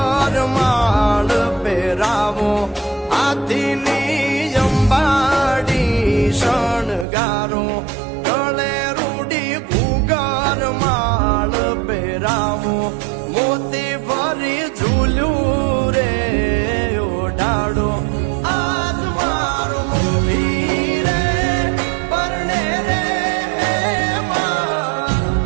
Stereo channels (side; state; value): left; drops out; at 7.1 s